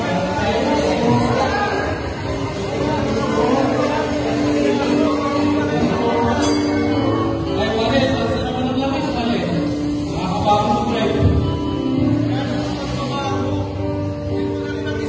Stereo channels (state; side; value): identical; both; correlation 1.00